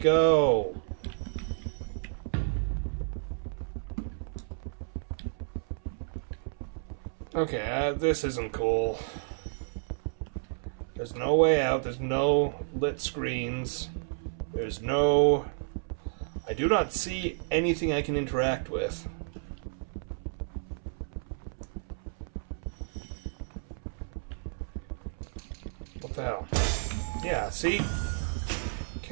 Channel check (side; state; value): left; silent; 57 dB below the other